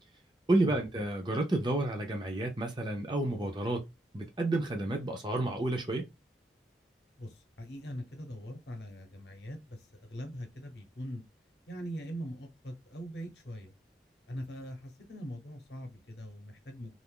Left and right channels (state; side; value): normal; both; correlation 0.78